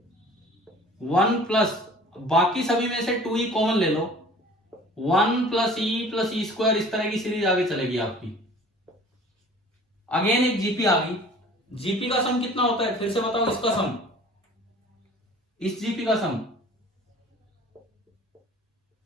1 प्लस, बाकी सभी में से 2e कॉमन ले लो, 1 + e + e², इस तरह की सीरीज आगे चलेगी आपकी। अगेन एक जीपी आ गई। जीपी का सम कितना होता है? फिर से बताओ इसका सम, इस जीपी का sum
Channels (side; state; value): both; normal; correlation 0.47